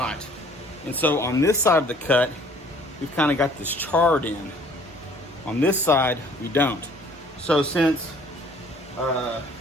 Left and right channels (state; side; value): normal; both; correlation 0.55